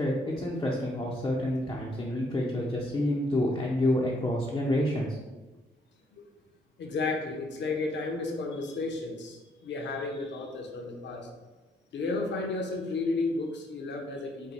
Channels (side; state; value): both; normal; correlation 0.70